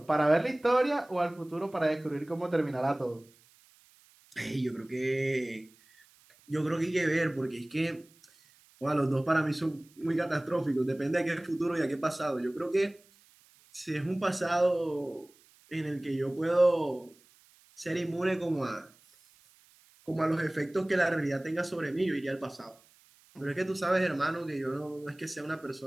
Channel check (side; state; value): right; noise; hiss, 29 dB below the sound